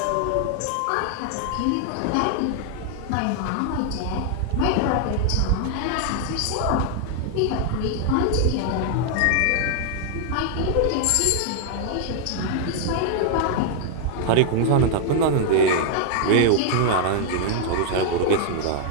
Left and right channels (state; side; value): different; both; correlation 0.00